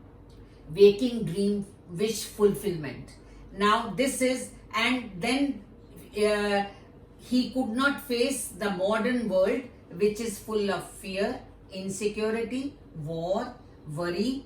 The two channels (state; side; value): identical; both; correlation 1.00